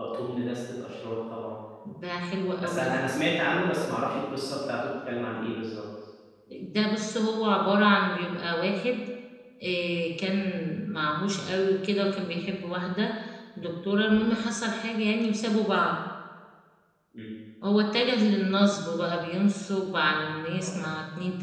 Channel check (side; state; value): both; identical; correlation 1.00